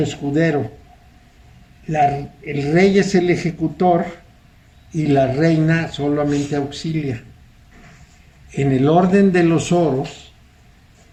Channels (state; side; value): identical; both; correlation 1.00